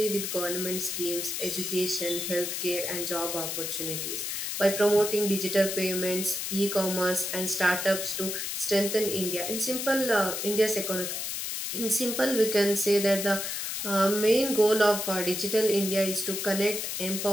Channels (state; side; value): noise; left; hiss, 3 dB below the sound